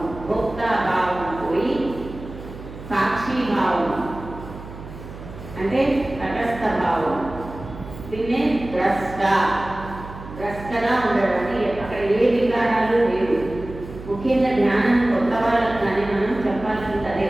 భోక్తాభావం పోయి సాక్షిభావం అంటే తటస్థ భావం. దీన్నే ద్రష్టగా ఉండడానికి అక్కడ ఏ వికారాలు లేవు. ముఖ్యంగా ధ్యానం కొత్త వాళ్ళకి కానీ మనం చెప్పాల్సింది అదే,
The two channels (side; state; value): right; noise; hum, 14 dB below the sound